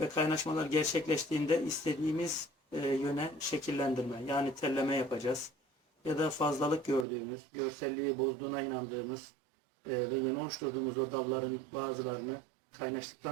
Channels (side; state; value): left; drops out; at 7.1 s